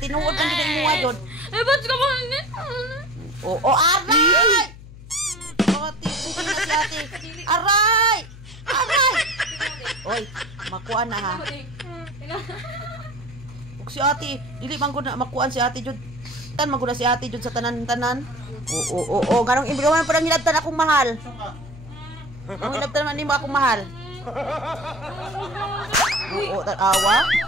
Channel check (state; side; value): noise; left; hum, 17 dB below the sound